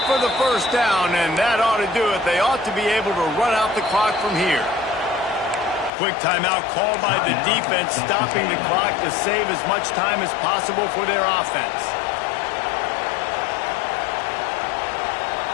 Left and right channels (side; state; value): right; drops out; at 5.9 s